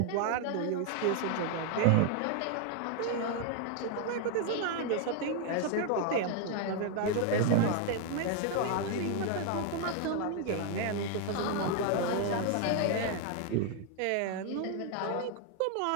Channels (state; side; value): different; both; correlation 0.00